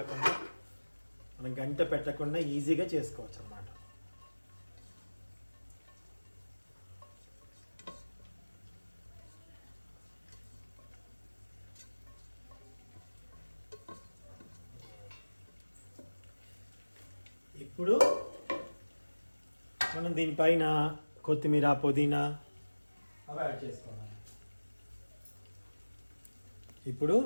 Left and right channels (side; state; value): both; inverted; correlation -1.00